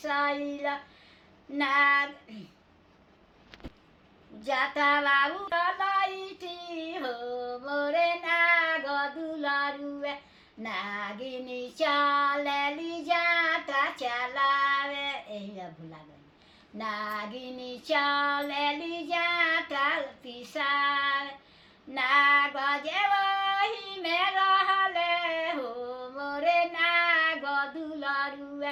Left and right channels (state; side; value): identical; both; correlation 1.00